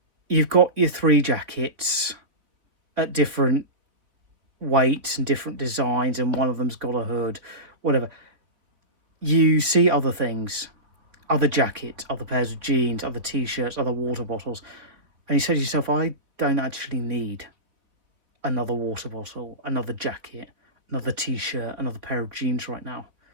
you've got your 3 jackets at different weights and different designs, and one of them's got a hood, whatever. You see other things, other jackets, other pairs of jeans, other t-shirts, other water bottles, and you say to yourself, I don't actually need another water bottle, another jacket, another t-shirt, another pair of jeans right now.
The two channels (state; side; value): late; left; 3.6 ms